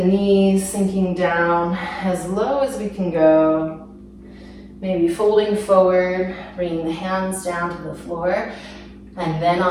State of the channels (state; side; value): identical; both; correlation 1.00